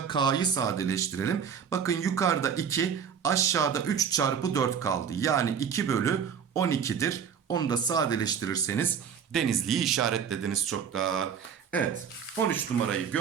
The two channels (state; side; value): quieter; left; 7.4 dB